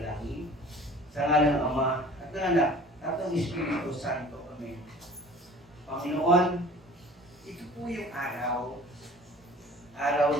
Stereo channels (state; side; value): normal; both; correlation 0.46